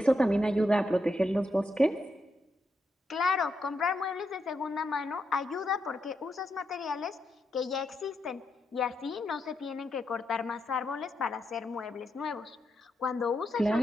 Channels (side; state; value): both; normal; correlation 0.83